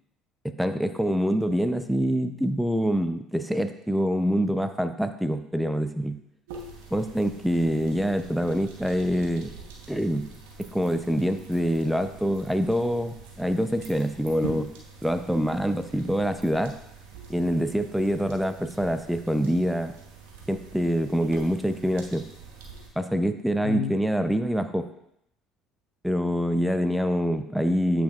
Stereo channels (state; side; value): normal; both; correlation 0.92